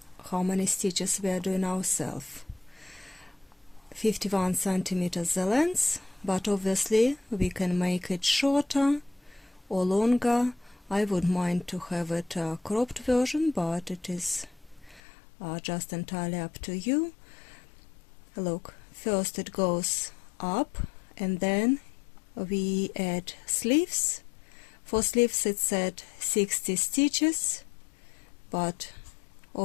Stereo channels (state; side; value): drops out; right; at 15.0 s